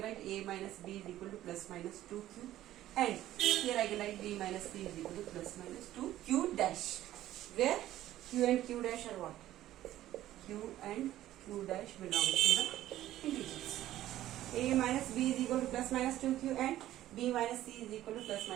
write A minus B is equal to plus minus 2Q, and here I can write B minus C is equal to plus minus 2Q dash, where Q and Q dash are what? Q and Q dash belongs to the integers. A minus B is equal to plus minus 2Q and B minus C is equal to plus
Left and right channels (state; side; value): quieter; left; 13.8 dB